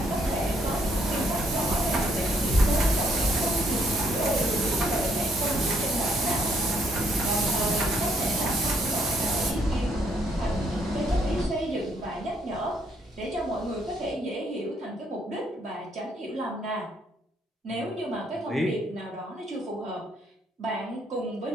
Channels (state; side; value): normal; both; correlation 0.69